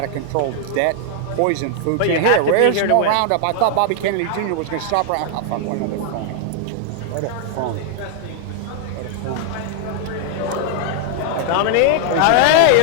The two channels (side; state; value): both; different; correlation 0.00